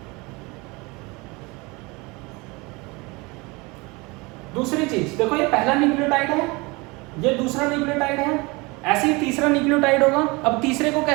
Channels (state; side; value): quieter; left; 25.4 dB